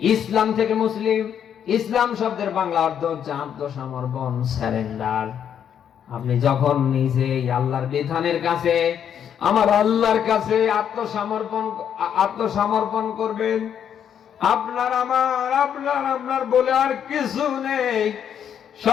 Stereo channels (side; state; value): right; quieter; 8.8 dB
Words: ইসলাম থেকে মুসলিম। ইসলাম শব্দের বাংলা অর্থ হচ্ছে আত্মসমর্পণ, সারেন্ডার। আপনি যখন নিজেই আল্লাহর বিধানের কাছে, আমার আল্লাহর কাছে আত্মসমর্পণ করবেন, আপনার আপনার বলে আর কিছু নেই,